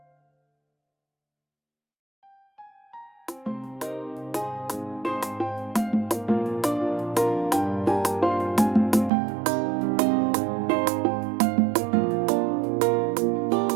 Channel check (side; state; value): left; drops out; at 9.1 s